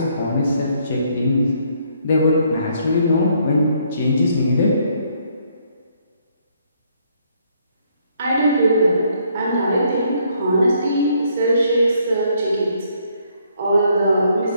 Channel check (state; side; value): inverted; both; correlation -0.69